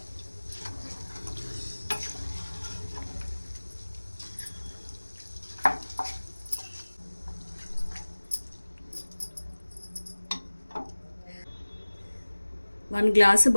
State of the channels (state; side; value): inverted; both; correlation -1.00